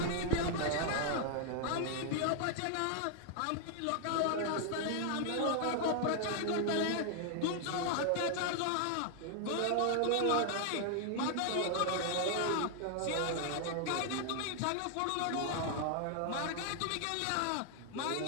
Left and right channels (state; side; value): different; both; correlation 0.00